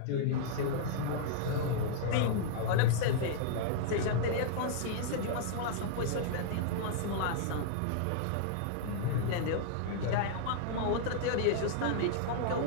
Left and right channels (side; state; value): both; different; correlation -0.01